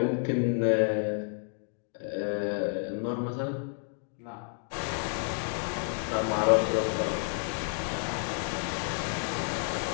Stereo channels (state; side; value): silent; right; 58 dB below the other